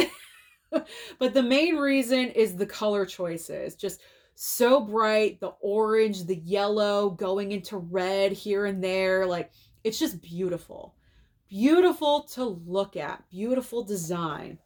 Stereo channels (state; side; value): identical; both; correlation 1.00